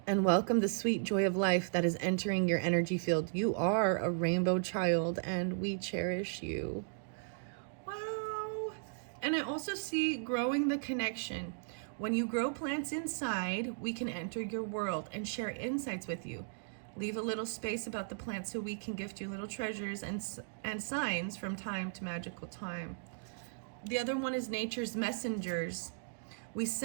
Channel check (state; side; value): silent; left; digital silence